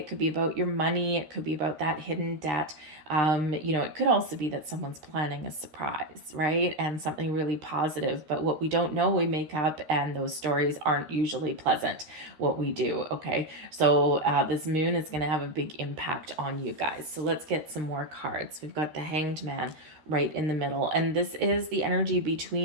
could be about your money. It could be about that hidden debt. It could also be that someone's planning a surprise, right? And something really positive. But what we don't know, we make up, and those stories aren't usually pleasant, what we do, okay? So this moon is going to have a big impact on you guys. So let's get some more cards. We've got the Hanged Man right in the middle, and this is the energy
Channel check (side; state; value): left; late; 13 ms